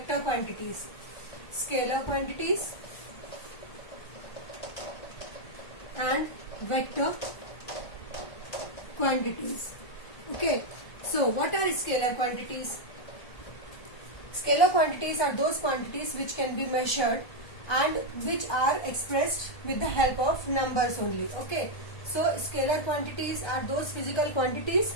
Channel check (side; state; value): right; late; 1.2 ms